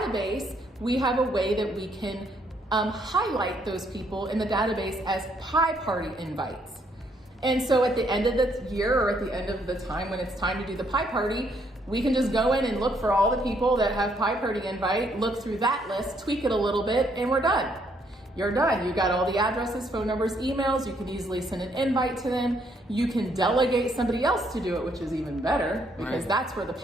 we have a way that we can highlight those people in the database as pie party invites. And so at the end of the year, or at the end of the time when it's time to do the pie party, we can just go in and look for all the people that have Pie Party invite, look through that list, tweak it a little bit, and we're done. You're done. You got all the addresses, phone numbers, emails. You can easily send an invite to them. You can delegate somebody else to do it, which is even better, because that's where the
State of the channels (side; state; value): both; normal; correlation 0.70